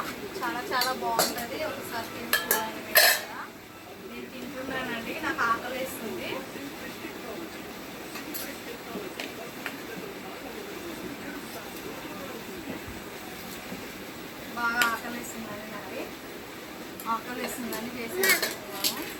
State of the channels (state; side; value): identical; both; correlation 1.00